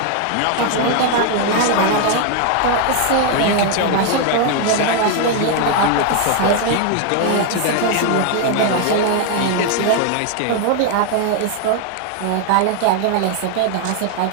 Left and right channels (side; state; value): both; different; correlation 0.00